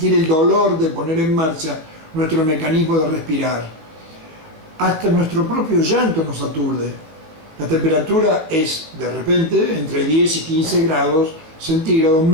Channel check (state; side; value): late; left; 19 ms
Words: el dolor de poner en marcha nuestro mecanismo de respirar. Hasta nuestro propio llanto nos aturde. La temperatura es, de repente, entre 10 y 15 grados centígrados